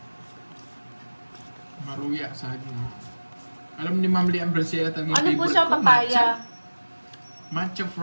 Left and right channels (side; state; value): both; inverted; correlation -1.00